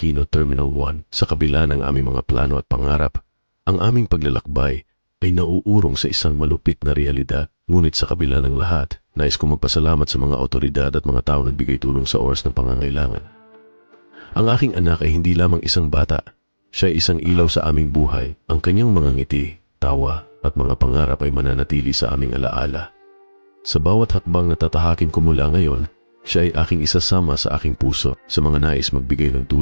Terminal 1. Sa kabila ng aming mga plano at pangarap, ang aming paglalakbay ay nauurong sa isang malupit na realidad. Ngunit sa kabila ng lahat, nais kong magpasalamat sa mga otoridad at mga tao na nagbigay tulong sa oras ng pangangailangan. Ang aking anak ay hindi lamang isang bata. Siya ay isang ilaw sa aming buhay. Ang kanyang mga ngiti, tawa, at mga pangarap ay mananatili sa aming alaala. Sa bawat hakbang na tatahakin ko mula ngayon, siya ay aking isasama sa aking puso. Sa mga nais magbigay ng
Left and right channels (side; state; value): both; inverted; correlation -1.00